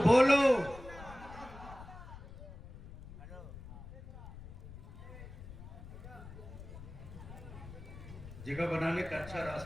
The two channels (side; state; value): left; noise; rumble, 14 dB below the sound